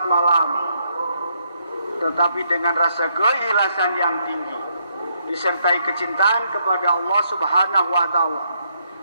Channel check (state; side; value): inverted; both; correlation -0.75